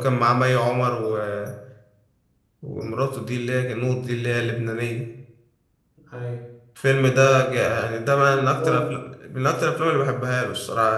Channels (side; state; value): both; identical; correlation 1.00